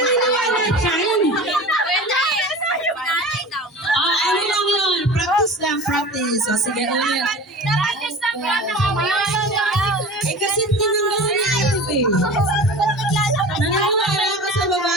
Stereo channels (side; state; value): both; normal; correlation 0.36